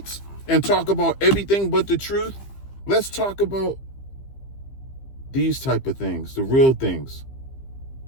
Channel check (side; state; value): right; late; 15 ms